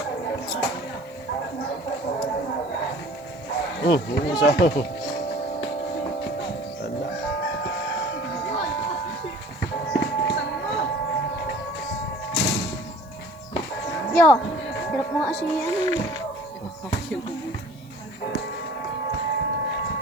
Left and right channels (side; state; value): right; noise; hiss, 29 dB below the sound